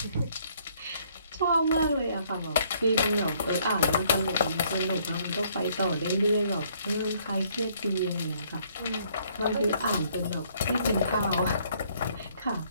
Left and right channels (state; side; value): inverted; both; correlation -0.65